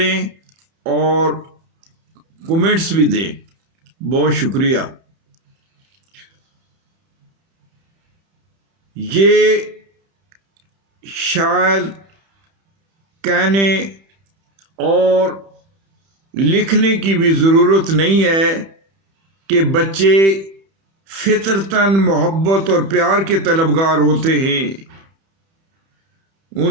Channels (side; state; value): left; late; 31 ms